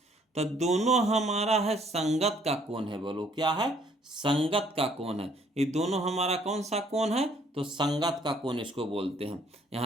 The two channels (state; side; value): normal; both; correlation 0.63